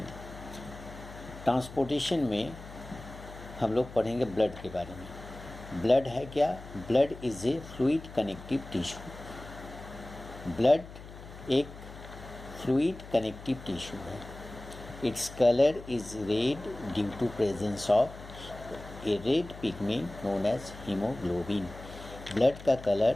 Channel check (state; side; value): noise; left; hum, 15 dB below the sound